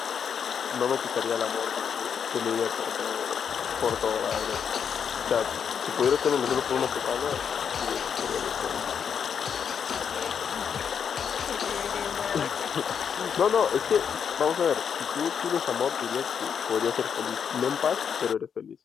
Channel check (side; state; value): right; quieter; 7.3 dB